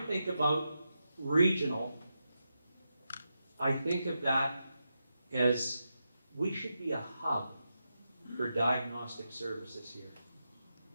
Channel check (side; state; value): both; inverted; correlation -0.87